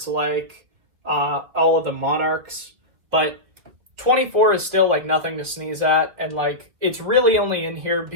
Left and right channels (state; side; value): late; left; 2.4 ms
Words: like all of the Monarchs, but 24 is still like nothing to sneeze at, and like it's really only in here